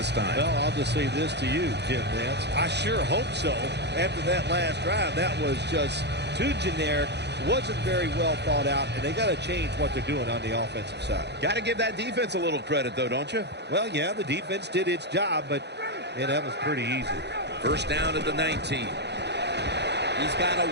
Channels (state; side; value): late; left; 0.50 ms